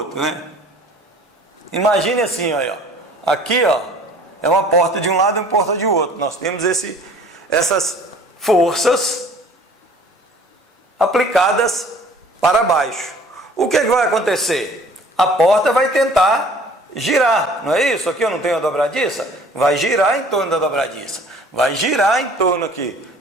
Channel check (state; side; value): normal; both; correlation 0.50